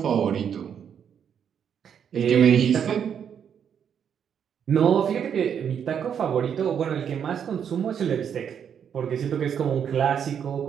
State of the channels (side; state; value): left; quieter; 8.1 dB